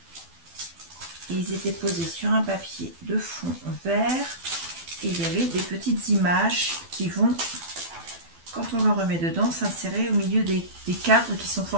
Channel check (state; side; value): late; left; 12 ms